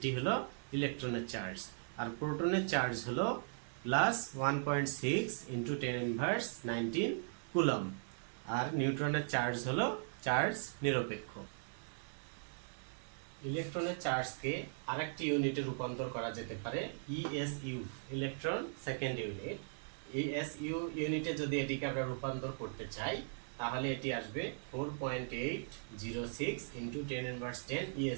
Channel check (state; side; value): silent; left; digital silence